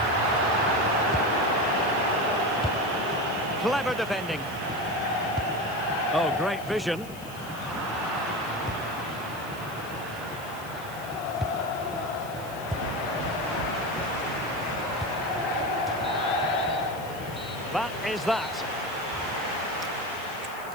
Clever defending. Oh, great vision. That is that.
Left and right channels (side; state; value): left; noise; hiss, 18 dB below the sound